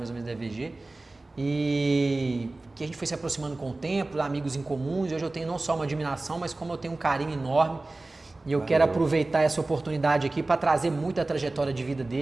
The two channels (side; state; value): left; quieter; 3.1 dB